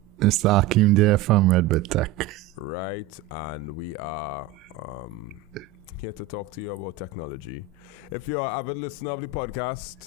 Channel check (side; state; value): left; quieter; 8.4 dB